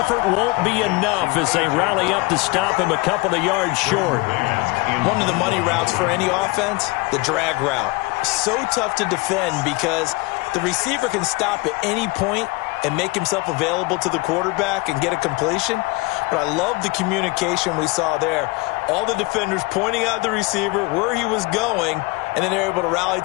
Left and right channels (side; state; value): right; quieter; 23.9 dB